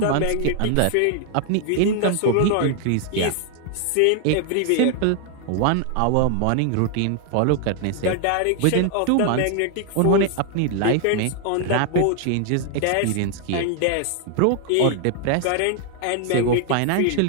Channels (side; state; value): both; different; correlation 0.00